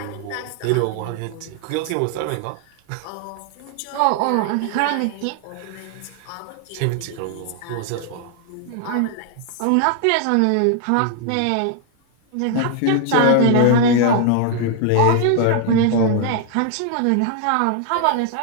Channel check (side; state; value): both; different; correlation 0.00